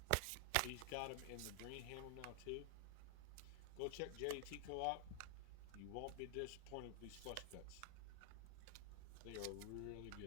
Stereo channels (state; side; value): different; both; correlation 0.00